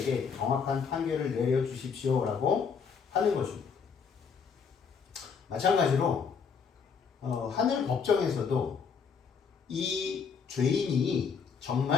정확한 판결을 내려주십시오라고 하는 것입니다. 마찬가지로 하늘 법정에서도 이 죄인이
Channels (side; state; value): right; quieter; 6.1 dB